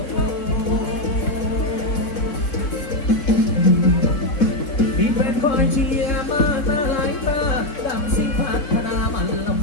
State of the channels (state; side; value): late; right; 3.7 ms